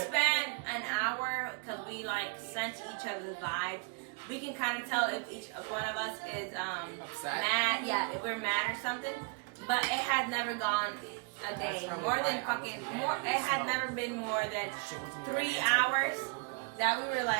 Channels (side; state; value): left; quieter; 33.8 dB